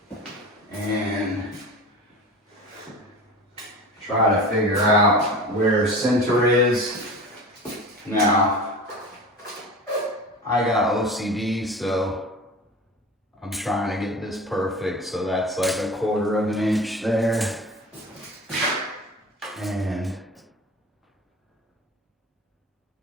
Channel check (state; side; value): normal; both; correlation 0.34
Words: And try to figure out where center is. Now, I got OCD, so I'm trying to get this perfect, so that's like 1/4 of an inch there. And